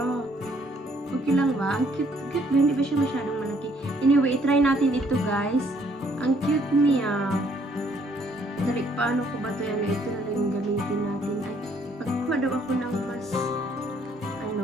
Okay lang ba? Ang cute. Cute ba? Hindi ba siya masyadong malaki? Anyway, try natin ito guys. Ang cute niya. Dali, paano ko ba ito? Ito na lang yung gamitin natin. Ay, pagkuha daw ako ng mas, ano,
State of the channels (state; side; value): normal; both; correlation 0.65